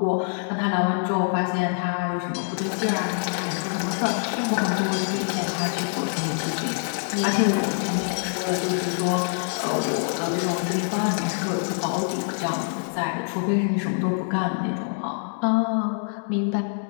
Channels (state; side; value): silent; right; 62 dB below the other